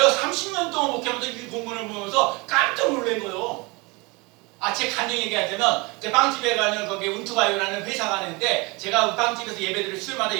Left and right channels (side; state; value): left; quieter; 26.7 dB